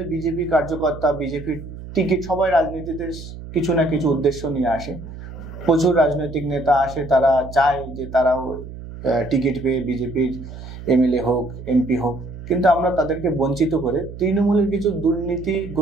বিজেপি কার্যকর্তা, বিজেপির টিকিট, সবাই রাজনীতিতে কিছু না কিছু উদ্দেশ্য নিয়ে আসে, প্রচুর রাজনৈতিক নেতা আসে, তারা চায় যে তারাও টিকিট পেয়ে বিজেপির এমএলএ হোক, এমপি হোক, কিন্তু আমরা তাদেরকে বঞ্চিত করে তৃণমূলের কিছু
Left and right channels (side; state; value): right; noise; hum, 12 dB below the sound